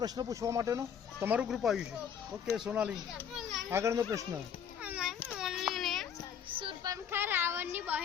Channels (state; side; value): quieter; right; 8.0 dB